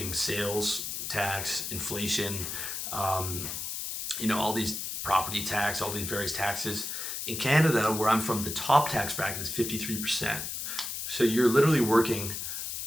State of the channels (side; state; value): left; noise; hiss, 5 dB below the sound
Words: sales tax, inflation. All these property tax, all these various taxes. In Canada, where I'm from, the top tax bracket is 53%. So you're literally working